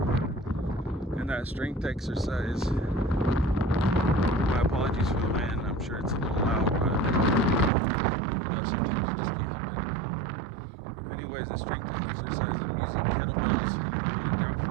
And that strength exercise, my apologies for the wind, I'm sure it's a little loud, but sometimes you just can't help it. Anyways, the strength exercise, I'm using kettlebells.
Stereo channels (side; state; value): left; drops out; at 7.7 s